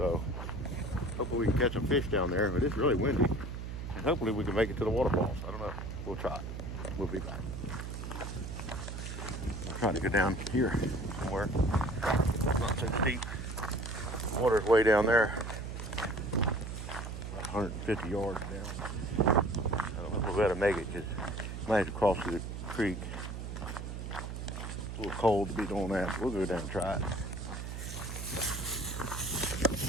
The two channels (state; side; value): noise; right; hum, 7 dB below the sound